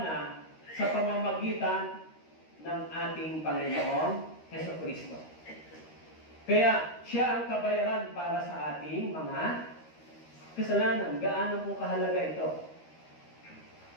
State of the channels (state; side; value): late; right; 13 ms